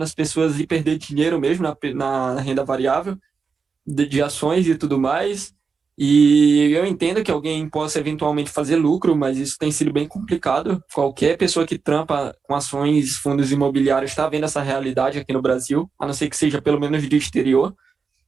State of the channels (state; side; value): quieter; left; 5.2 dB